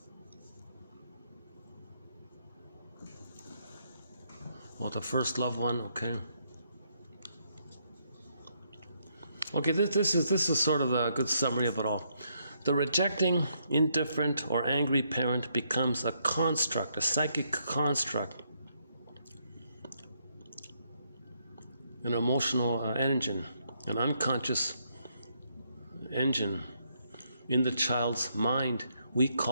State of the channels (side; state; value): both; inverted; correlation -0.75